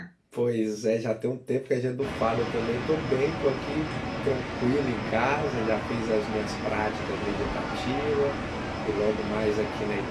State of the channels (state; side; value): identical; both; correlation 1.00